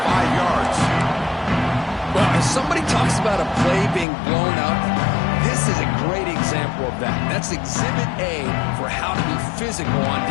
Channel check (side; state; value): right; drops out; at 4.0 s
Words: yards. Well, if somebody talks about a play being blown up, this is a great example of that. That's Exhibit A for how to be physical on